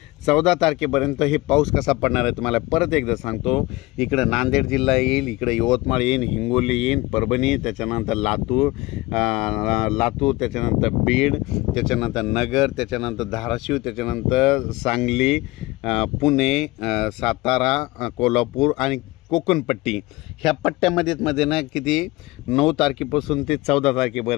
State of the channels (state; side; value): quieter; right; 20.7 dB